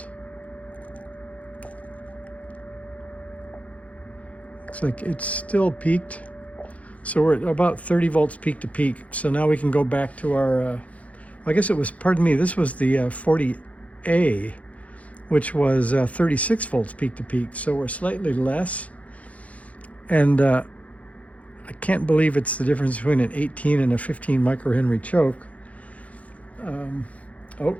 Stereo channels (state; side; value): late; right; 0.067 ms